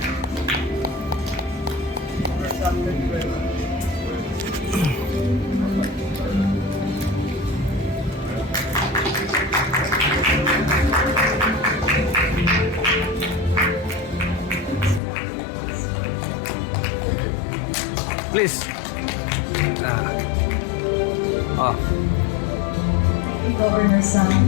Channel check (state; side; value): drops out; right; at 15.0 s